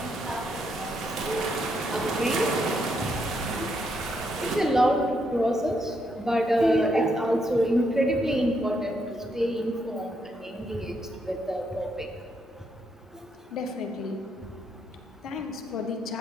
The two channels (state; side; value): normal; both; correlation 0.77